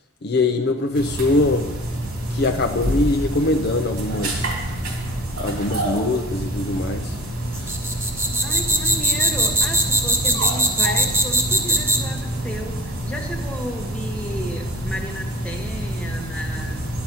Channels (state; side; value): normal; both; correlation 0.38